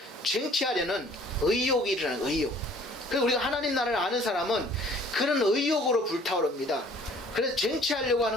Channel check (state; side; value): normal; both; correlation 0.55